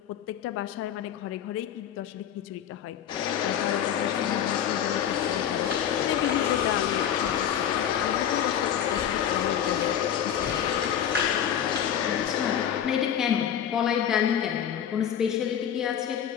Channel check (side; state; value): right; quieter; 9.4 dB